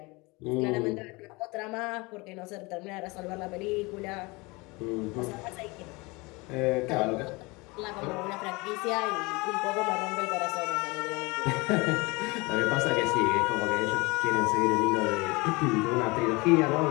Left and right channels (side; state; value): right; quieter; 25.2 dB